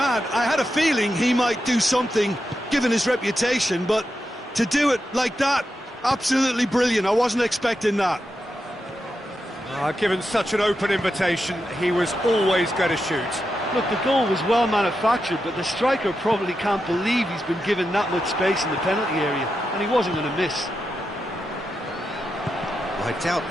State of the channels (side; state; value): both; normal; correlation 0.87